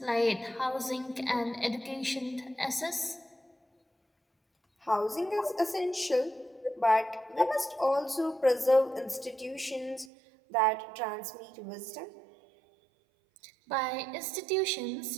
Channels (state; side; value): drops out; left; at 10.1 s